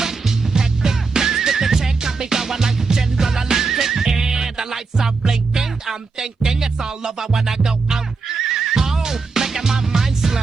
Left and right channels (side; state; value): left; quieter; 4.4 dB